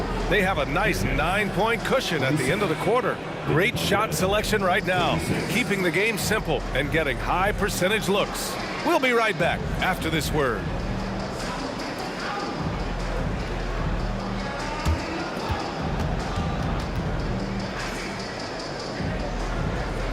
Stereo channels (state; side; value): identical; both; correlation 1.00